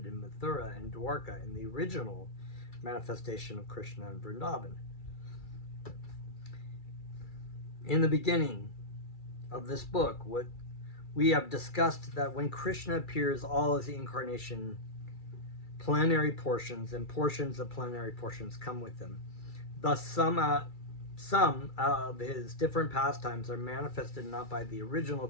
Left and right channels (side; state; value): right; late; 2.3 ms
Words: in Mathura and Dwarka and the original manifestation of Krishna in Vrindavan. In the beginning of this book, what we have discussed that when Krishna appears, all his incarnation plenary portions and portions of plenary portions come with him. Thus, some of his different pastimes are manifested not by the original